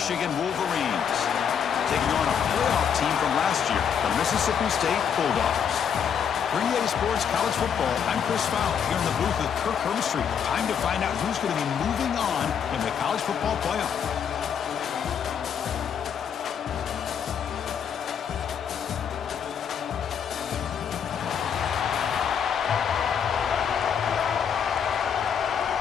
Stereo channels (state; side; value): quieter; right; 7.7 dB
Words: Wolverines, taking on a playoff team from last year, the Mississippi State Bulldogs. For EA Sports College Football, I'm Chris Fowler here in the booth with Kirk Hermstreet. Time to find out who's going to be moving on in the college football playoff.